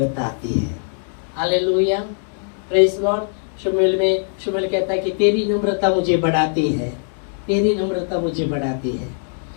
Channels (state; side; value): silent; right; digital silence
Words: आती है। Hallelujah, praise Lord. शमूएल कहता है कि तेरी नम्रता मुझे बढ़ाती है, तेरी नम्रता मुझे बढ़ाती है।